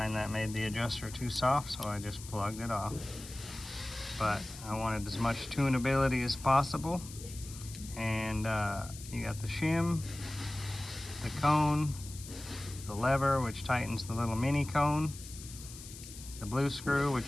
that made the adjuster too soft, so I just plugged it off. But I wanted as much tunability as possible, and you got the shim, the cone, the lever, which tightens the little mini cone, the blue screw,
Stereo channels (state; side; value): noise; left; hiss, 14 dB below the sound